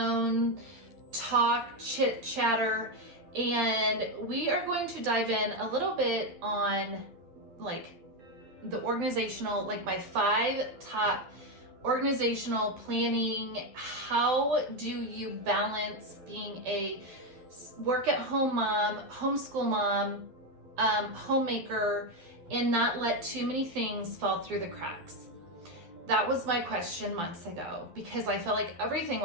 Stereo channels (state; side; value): late; left; 12 ms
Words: talk, chit chatter, and we are going to dive in a little bit on like the organizational, like my 5 top organizational planning. How do you balance being a work at home mom, homeschool mom, homemaker, and not let too many things fall through the cracks? That was my question months ago because I felt like everything